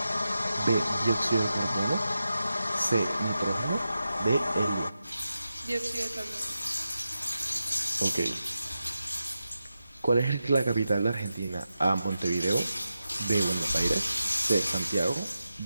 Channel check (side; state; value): both; inverted; correlation -0.90